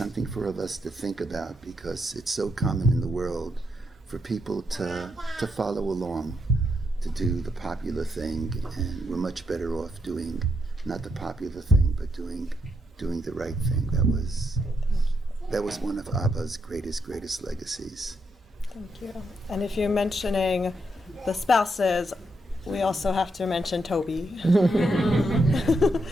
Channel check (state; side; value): normal; both; correlation 0.80